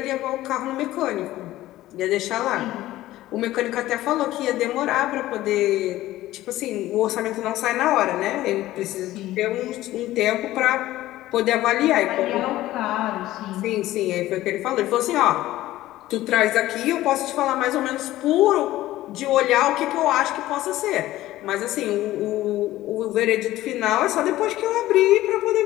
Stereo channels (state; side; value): quieter; right; 15.6 dB